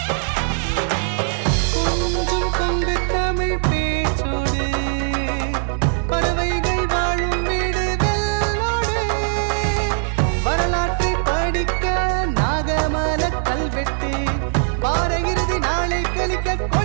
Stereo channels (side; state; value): left; silent; 65 dB below the other